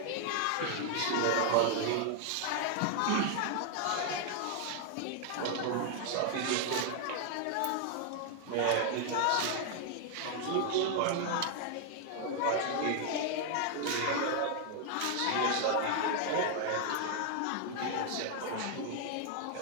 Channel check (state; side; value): different; both; correlation 0.00